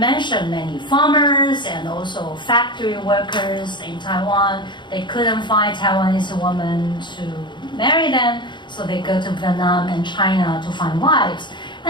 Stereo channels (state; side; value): late; right; 0.22 ms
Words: many farmers and also factory workers in Taiwan, they couldn't find Taiwanese women to marry them, so they go to Vietnam and China to find wives.